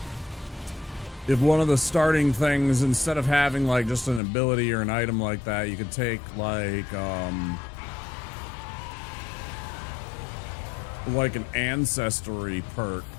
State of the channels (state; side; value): drops out; right; at 4.2 s